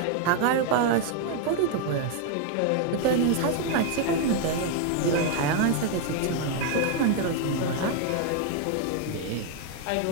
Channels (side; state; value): both; different; correlation 0.00